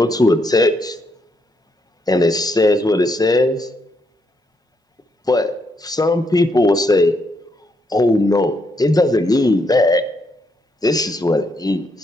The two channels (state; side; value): normal; both; correlation 0.76